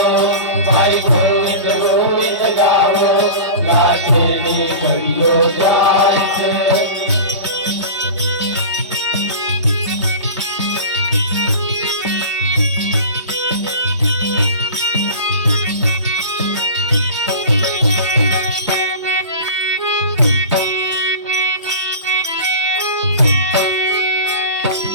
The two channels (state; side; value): inverted; both; correlation -0.33